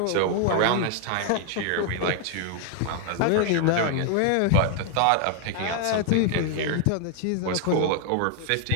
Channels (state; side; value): different; both; correlation 0.00